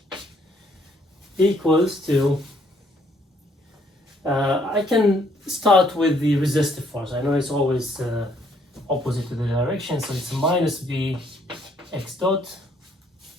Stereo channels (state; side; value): normal; both; correlation 0.67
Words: equals to, I can start with the resistive force. I know it's always opposite to the direction, so it's minus b x dot.